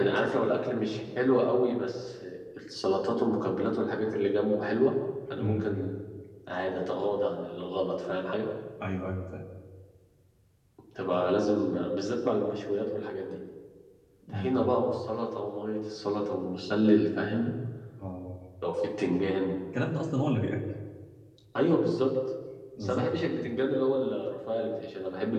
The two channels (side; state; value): both; identical; correlation 1.00